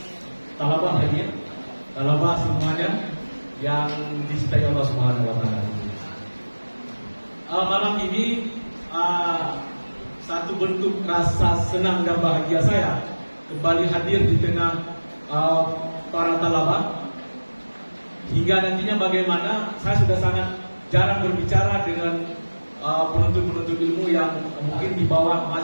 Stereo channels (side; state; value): both; inverted; correlation -1.00